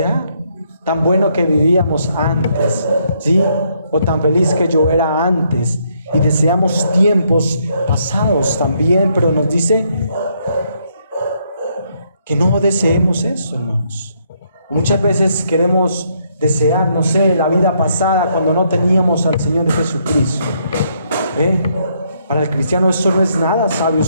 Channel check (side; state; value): both; inverted; correlation -0.73